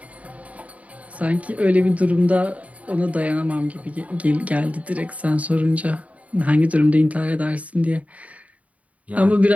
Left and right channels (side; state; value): left; late; 0.068 ms